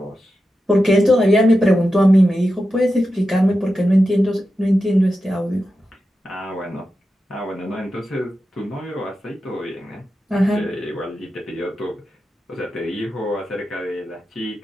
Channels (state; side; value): normal; both; correlation 0.90